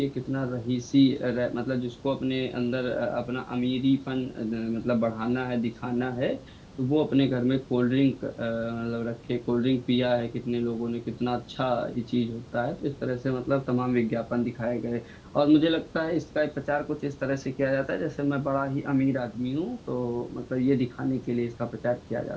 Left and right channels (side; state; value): both; identical; correlation 1.00